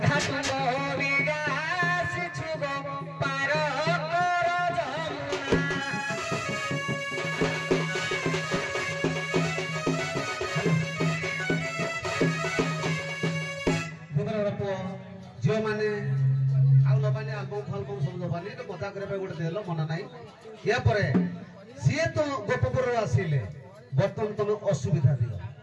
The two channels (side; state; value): both; identical; correlation 1.00